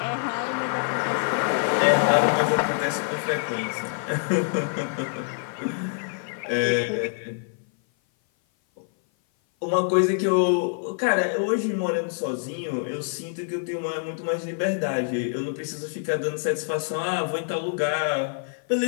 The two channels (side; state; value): right; silent; 56 dB below the other